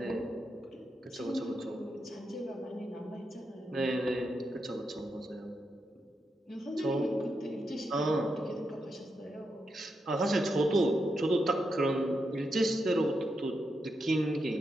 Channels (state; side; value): normal; both; correlation 0.84